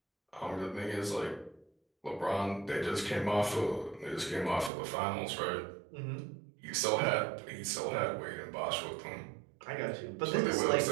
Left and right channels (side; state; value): left; drops out; at 4.7 s